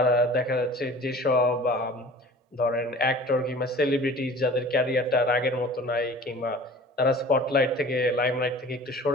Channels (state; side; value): normal; both; correlation 0.43